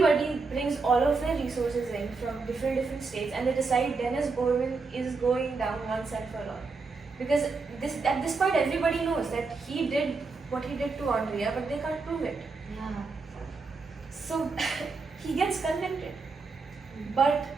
brings all of their resources in from different states, and they decide Dennis Bowman is going down once and for all. Because at this point, everybody knows that he did what he did to Aundria, but they can't prove it. Yeah. So he gets convicted, but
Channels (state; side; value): quieter; left; 4.3 dB